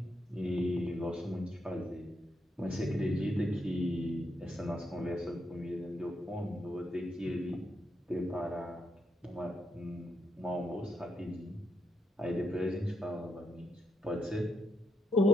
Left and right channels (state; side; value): normal; both; correlation 0.80